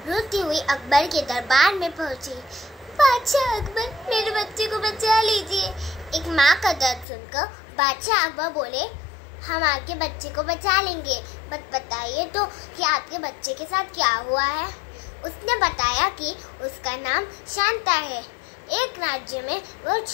रोती हुई अकबर के दरबार में पहुंची। बादशाह अकबर, मेरे बच्चे को बचा लीजिए। एक माँ का दर्द सुनकर बादशाह अकबर बोले, हम आपके बच्चे को बचा लेंगे, बस बताइए तो कि आपके बच्चे के साथ क्या हुआ है। उसने बताया कि उसका नाम शांता है। एक राज्य में वो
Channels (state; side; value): drops out; right; at 7.1 s